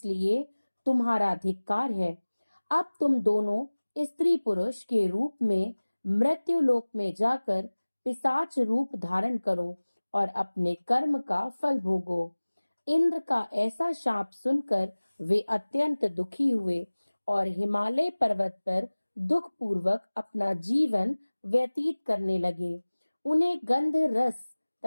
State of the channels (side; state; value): both; inverted; correlation -1.00